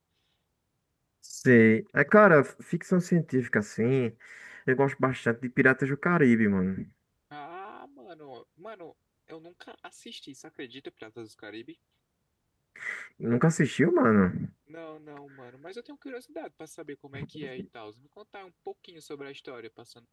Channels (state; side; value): identical; both; correlation 1.00